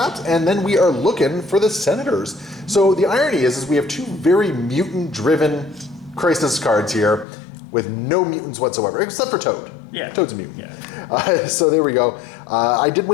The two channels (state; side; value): drops out; right; at 7.2 s